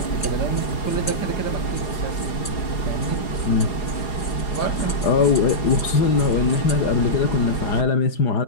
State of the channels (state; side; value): late; right; 4.9 ms